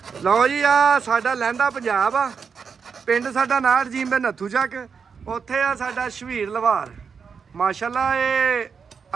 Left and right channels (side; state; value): left; quieter; 6.0 dB